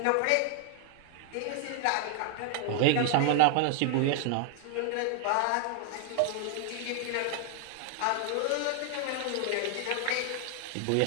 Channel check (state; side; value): different; both; correlation 0.00